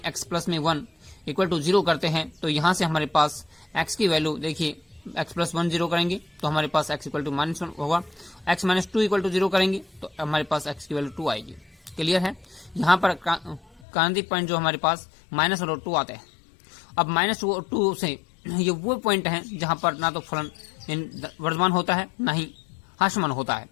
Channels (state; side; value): drops out; right; at 13.8 s